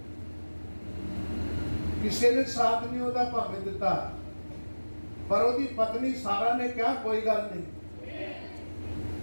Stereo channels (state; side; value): inverted; both; correlation -1.00